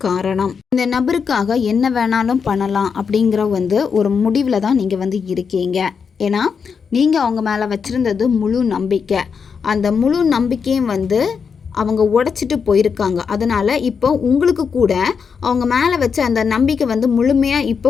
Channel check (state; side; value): quieter; right; 6.1 dB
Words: காரணம். இந்த நபருக்கு என்ன வேணாலும் பண்ணலாம் அப்படிங்கிற வந்து ஒரு முடிவில் தான் நீங்கள் வந்து இருக்கீங்க. ஏன்னா நீங்கள் அவங்க மேலே வச்சுருந்தது முழு நம்பிக்கை. அந்த முழு நம்பிக்கையும் வந்து அவங்க உடைச்சிட்டு போயிருக்காங்க. அதனால் இப்போ உங்களுக்கு கூட அவங்க மேலே வச்ச அந்த நம்பிக்கை வந்து முழுமையாக